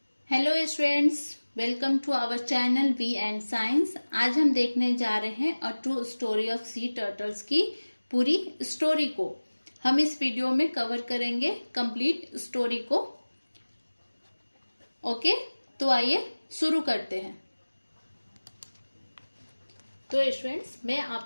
Hello students, welcome to our channel V and science. आज हम देखने जा रहे हैं a true story of sea turtles की पूरी स्टोरी को। हम इस वीडियो में कवर करेंगे कंप्लीट स्टोरी को। ओके, तो आइए शुरू करते हैं। तो स्टूडेंट्स, मैं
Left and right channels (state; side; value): inverted; both; correlation -1.00